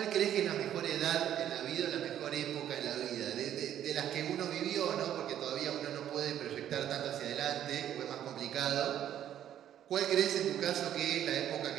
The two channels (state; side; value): quieter; left; 10.9 dB